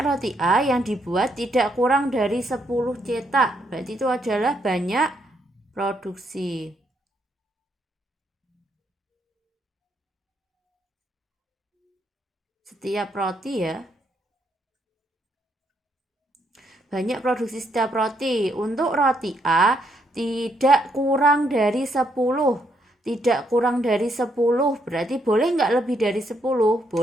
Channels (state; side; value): normal; both; correlation 0.75